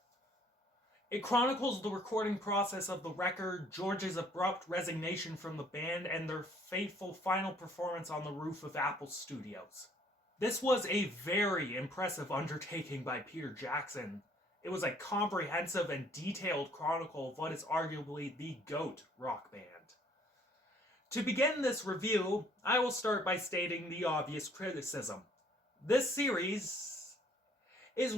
It chronicles the recording process of the record, George's abrupt resignation from the band, and their fateful final performance on the roof of Apple Studios. This was a very impressive undertaking by Peter Jackson. It was a comprehensive and detailed chronicle of what is arguably the GOAT rock band. To begin this review, I will start by stating the obvious criticism. This series is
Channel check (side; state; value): both; normal; correlation 0.60